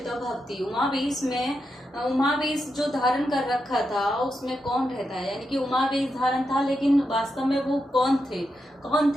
भक्ति। उमावेश में उमावेश जो धारण कर रखा था उसमें कौन रहता है, यानी कि उमावेश धारण था, लेकिन वास्तव में वो कौन थे?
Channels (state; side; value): normal; both; correlation 0.86